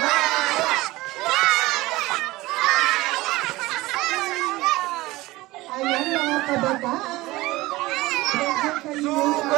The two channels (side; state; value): left; quieter; 19.5 dB